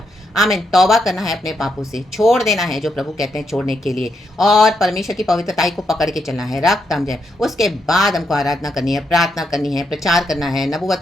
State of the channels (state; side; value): normal; both; correlation 0.80